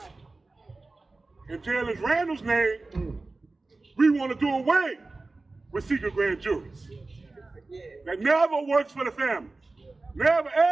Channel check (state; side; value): quieter; left; 3.4 dB